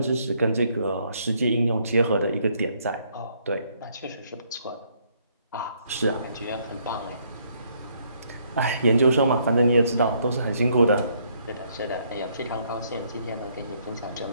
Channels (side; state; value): both; inverted; correlation -0.69